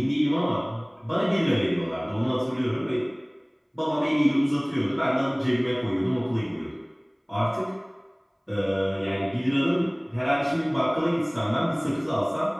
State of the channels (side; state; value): both; identical; correlation 1.00